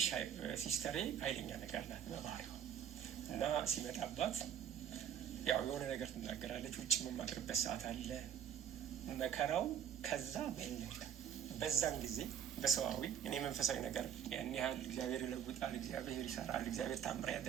ሲስተሬ ኃይለኛ ነገር ናት በባህሪዋ እና ሲመጣባት ያው የሆነ ነገር ትናገራለች። ውጭ የምማድርበት ሰዓት አለ መከራው። ከዛ በለጠ። በዛን ጊዜ በሰዋዊ እኔ መንፈሳዊ ነገር ያን ያህል እግዚአብሔር ይለውጣል፣ እግዚአብሔር ይሰራል፣ እግዚአብሔር ታምር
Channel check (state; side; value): quieter; left; 9.1 dB